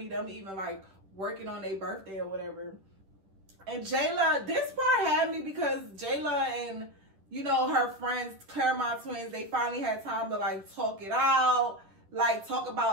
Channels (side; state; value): left; late; 10 ms